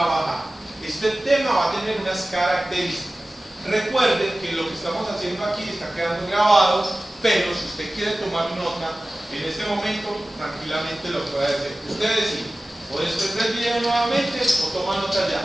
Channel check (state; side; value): normal; both; correlation 0.97